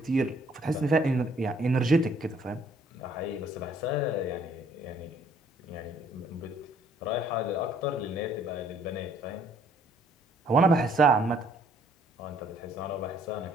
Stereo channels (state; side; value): normal; both; correlation 0.62